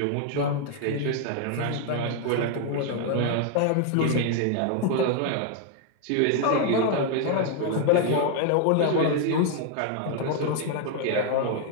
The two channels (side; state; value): both; different; correlation 0.00